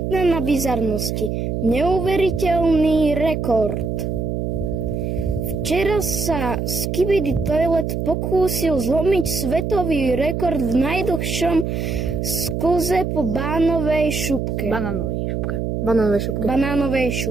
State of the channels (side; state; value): right; noise; hum, 2 dB below the sound